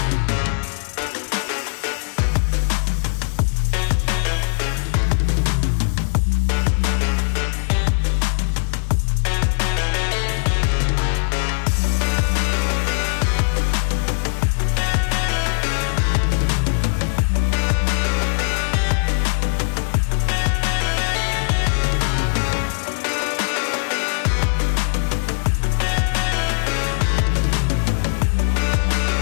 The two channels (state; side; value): silent; right; digital silence